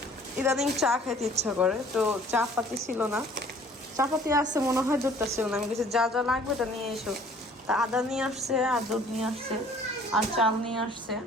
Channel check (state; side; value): normal; both; correlation 0.54